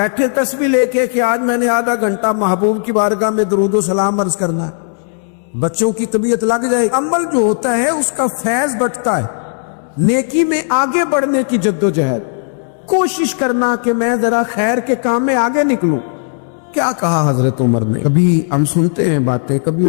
تسبیح لے کے کہ آج میں نے آدھا گھنٹہ محبوب کی بارگاہ میں درود و سلام عرض کرنا ہے، بچوں کی طبیعت لگ جائے۔ عمل جو ہوتا ہے اس کا فیض بٹتا ہے، نیکی میں آگے بڑھنے کی جد و جہد، کوشش کرنا کہ میں ذرا خیر کے کام میں آگے نکلوں۔ کیا کہا حضرت عمر نے؟ کبھی ہم سنتے ہیں باتیں، کبھی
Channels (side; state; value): right; silent; 67 dB below the other